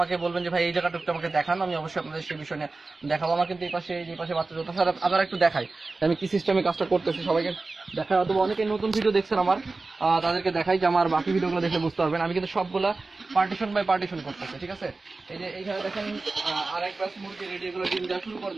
বলবেন যে ভাই এই জায়গাটা একটু আমাকে দেখান, আমি অবশ্যই আপনাদের সেই বিষয় নিয়ে দেখাবো। আমার কিন্তু এই পাশে বাচ্চা যত সারা আপনারা একটু দেখাই আমি কি সিস্টেমে কাজটা করতেছি, সবাইকে দেখাই। অথবা অনেকে নতুন ভিডিও দেখছেন আমার, তাদেরকে দেখাই যে আমার বাকি ভিডিওগুলো দেখলে বুঝতে পারবেন। আমি কিন্তু সবগুলা পার্টিশন বাই পার্টিশন করতেছি, ঠিক আছে। এই যে এইখানে দেখেন আরেক ব্যাচ মুরগি রেডি, এগুলো ডিম দেওয়া শুরু করে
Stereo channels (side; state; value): left; quieter; 3.6 dB